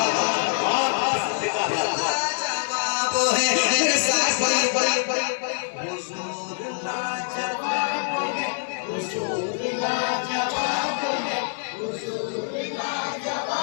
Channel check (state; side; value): silent; right; digital silence